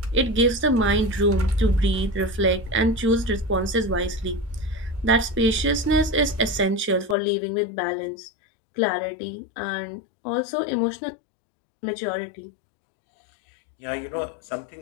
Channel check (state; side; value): drops out; right; at 7.2 s